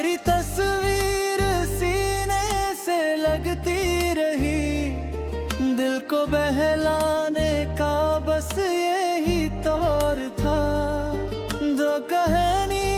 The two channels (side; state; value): both; identical; correlation 1.00